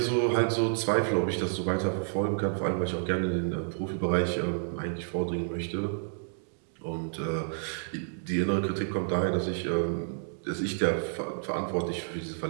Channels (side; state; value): left; silent; digital silence